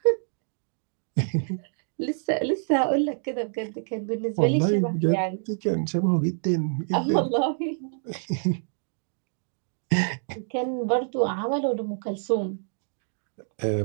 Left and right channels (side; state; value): left; silent; digital silence